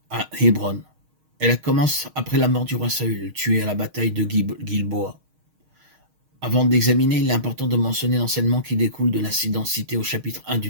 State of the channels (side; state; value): left; late; 6.5 ms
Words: à Hébron. Elle commence après la mort du roi Saül, tué à la bataille de Gilboa. Avant d'examiner, il est important de mentionner l'enseignement qui découle de l'incident cité au chapitre 1 du